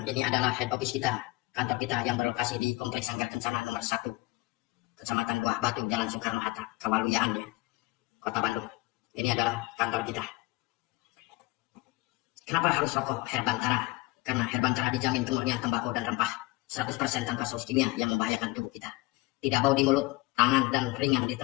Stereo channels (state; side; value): quieter; right; 21.6 dB